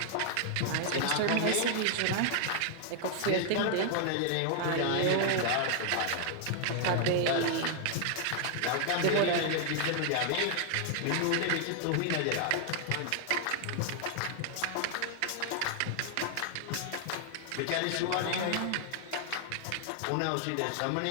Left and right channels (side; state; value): both; different; correlation 0.00